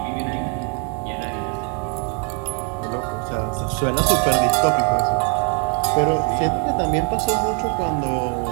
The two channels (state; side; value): quieter; left; 36.3 dB